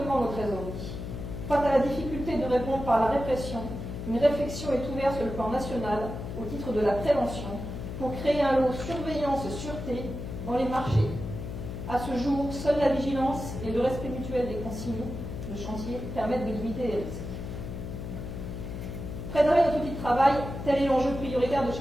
nos trésoreries. Face à la difficulté de répondre par la répression, une réflexion est ouverte sur le plan national au titre de la prévention pour créer un lot surveillance-sûreté dans les marchés. À ce jour, seule la vigilance et le respect mutuel des consignes de chantier permettent de limiter les risques. Préserver notre outil de travail, tel est l'enjeu prioritaire de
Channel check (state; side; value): noise; left; hum, 7 dB below the sound